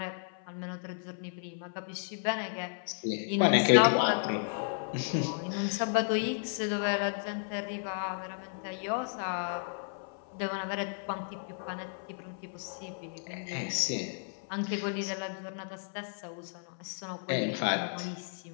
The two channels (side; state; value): right; silent; 55 dB below the other